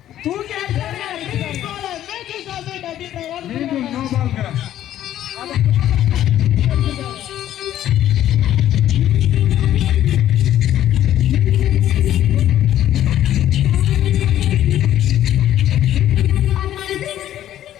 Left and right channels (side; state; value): right; quieter; 12.1 dB